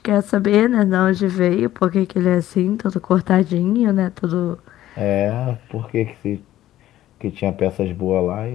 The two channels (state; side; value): quieter; right; 13.7 dB